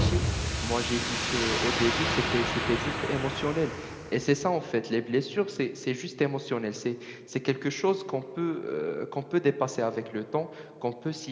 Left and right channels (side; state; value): both; identical; correlation 1.00